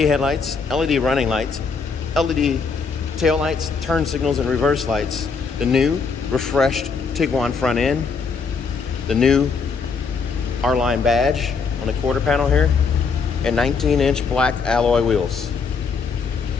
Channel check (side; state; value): right; quieter; 5.2 dB